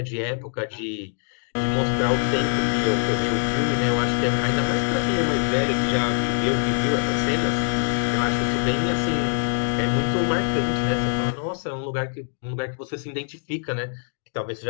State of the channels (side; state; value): right; silent; digital silence